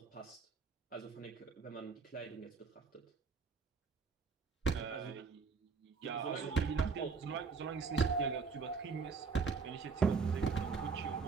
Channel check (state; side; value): quieter; left; 5.0 dB